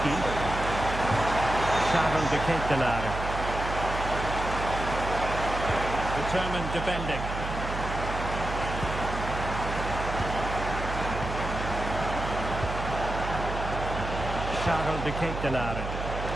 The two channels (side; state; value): right; noise; hum, 6 dB below the sound